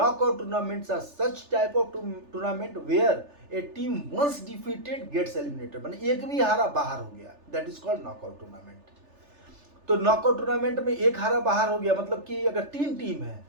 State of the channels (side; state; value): left; late; 3.4 ms